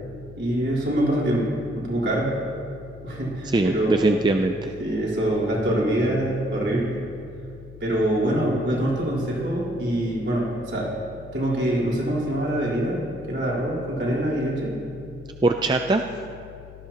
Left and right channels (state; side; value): noise; left; hum, 17 dB below the sound